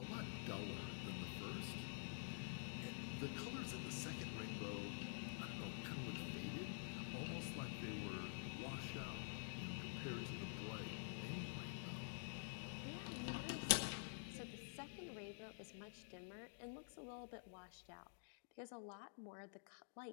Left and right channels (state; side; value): silent; right; digital silence